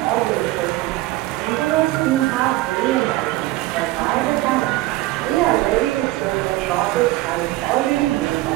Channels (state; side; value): quieter; left; 18.2 dB